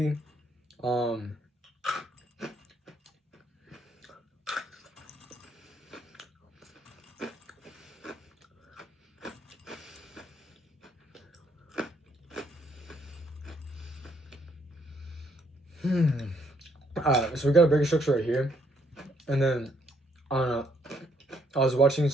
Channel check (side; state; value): both; normal; correlation 0.71